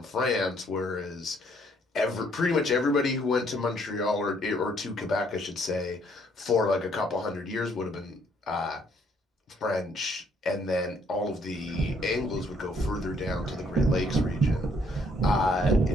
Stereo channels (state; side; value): normal; both; correlation 0.66